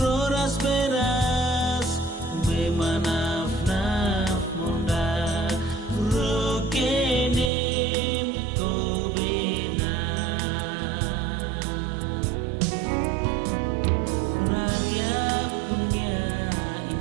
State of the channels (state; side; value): drops out; left; at 7.5 s